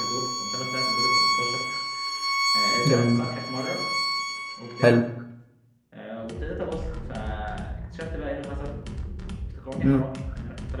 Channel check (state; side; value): identical; both; correlation 1.00